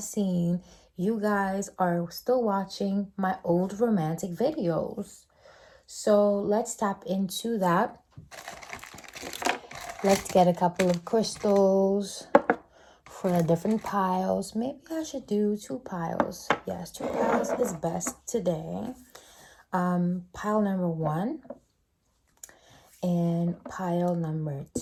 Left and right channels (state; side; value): identical; both; correlation 1.00